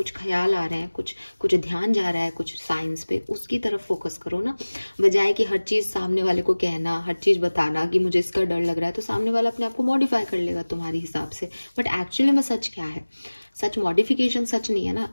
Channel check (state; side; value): inverted; both; correlation -1.00